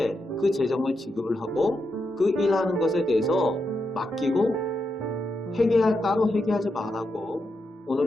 그 재정을 지급을 하고 그 일하는 것에 대해서 맡기고 따로 회개하지 말라고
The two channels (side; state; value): both; normal; correlation 0.85